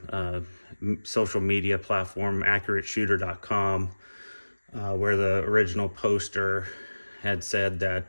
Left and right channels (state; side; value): inverted; both; correlation -1.00